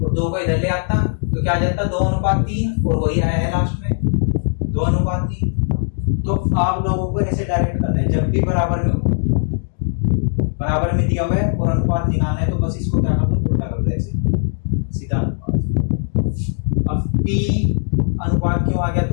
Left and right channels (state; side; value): silent; right; digital silence